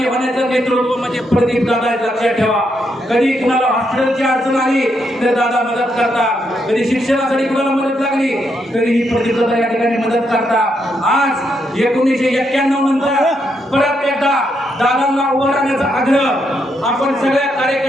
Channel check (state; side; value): normal; both; correlation 0.79